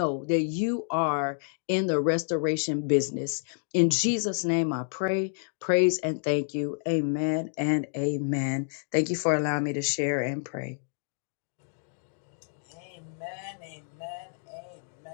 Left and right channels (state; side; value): silent; right; digital silence